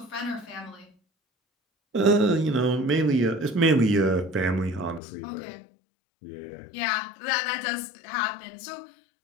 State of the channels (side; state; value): right; drops out; at 5.0 s